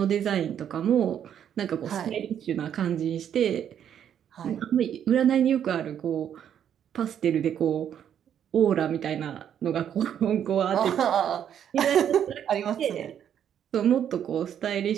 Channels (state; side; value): quieter; left; 9.3 dB